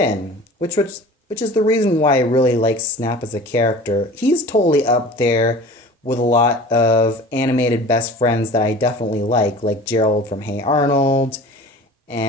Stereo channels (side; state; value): both; normal; correlation 0.40